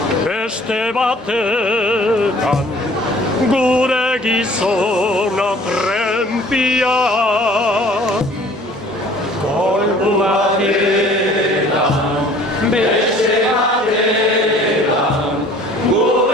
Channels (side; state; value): both; normal; correlation 0.52